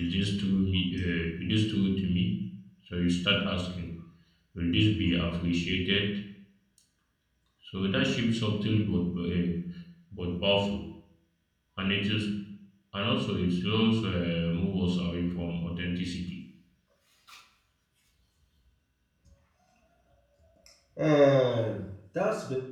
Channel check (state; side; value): identical; both; correlation 1.00